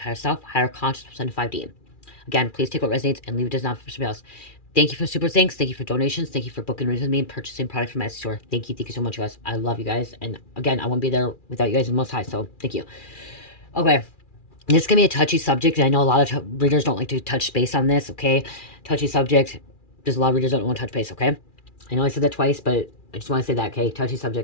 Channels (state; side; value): late; right; 2.4 ms